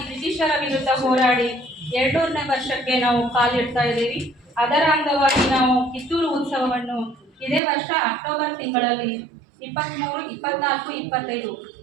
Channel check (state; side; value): drops out; left; at 7.6 s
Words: ಬ್ರಿಟಿಷರ ವಿರುದ್ಧ ಹೋರಾಡಿ 200ನೇ ವರ್ಷಕ್ಕೆ ನಾವು ಕಾಲಿಡ್ತಾ ಇದ್ದೀವಿ. ಅದರ ಅಂಗವಾಗಿ ನಾವು ಕಿತ್ತೂರು ಉತ್ಸವವನ್ನು ಇದೇ ವರ್ಷ ಅಕ್ಟೋಬರ್ ತಿಂಗಳಲ್ಲಿ 23, 24, 25